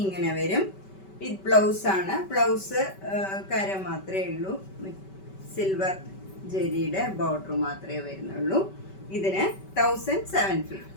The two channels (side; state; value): right; late; 5.2 ms